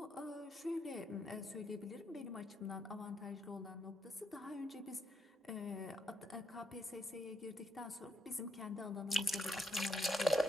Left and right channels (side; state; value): both; normal; correlation 0.77